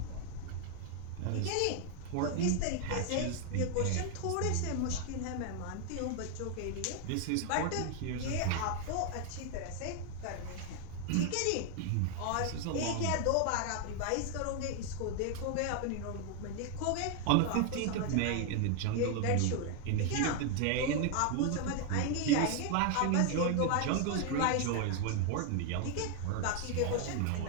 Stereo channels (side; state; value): both; different; correlation 0.00